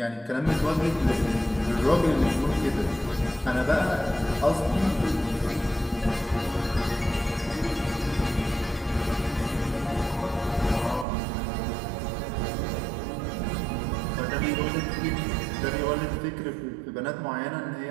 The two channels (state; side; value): drops out; left; at 11.1 s